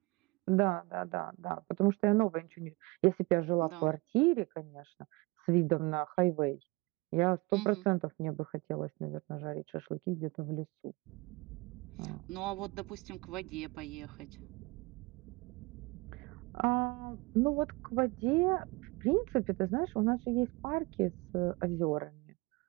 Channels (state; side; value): quieter; left; 25.0 dB